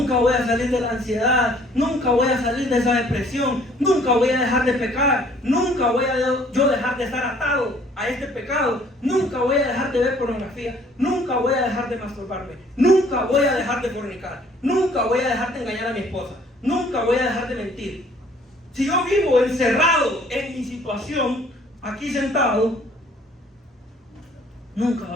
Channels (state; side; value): normal; both; correlation 0.58